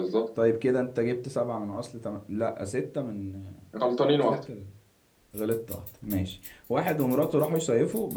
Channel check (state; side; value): identical; both; correlation 1.00